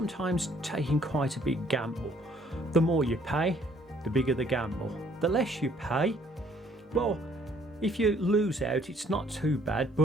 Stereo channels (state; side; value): normal; both; correlation 0.62